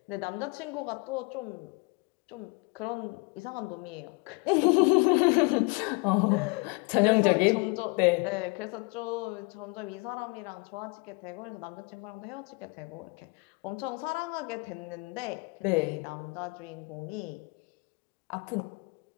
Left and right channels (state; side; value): quieter; right; 29.7 dB